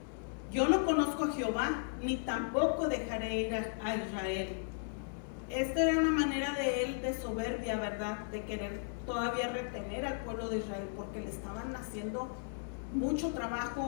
Yo no conozco a Jehová, ni tampoco dejaré ir a Israel. Esta era una manera de él de soberbia, ¿verdad?, de querer todavía retener al pueblo de Israel, porque le estaban haciendo mucho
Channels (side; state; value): right; silent; digital silence